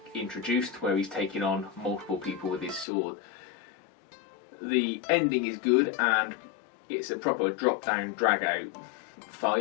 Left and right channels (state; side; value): drops out; right; at 2.9 s